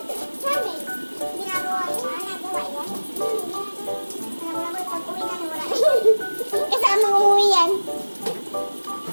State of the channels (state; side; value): inverted; both; correlation -1.00